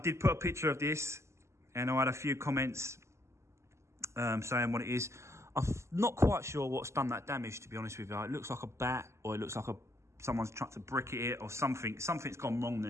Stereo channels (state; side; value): late; left; 0.13 ms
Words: put a picture of this, and I had a few comments saying what it is. I'm not quite sure what's done that damage, to be honest with you. It looks like a bat, or it looks like someone's tried to brick it, or something. Something's gone wrong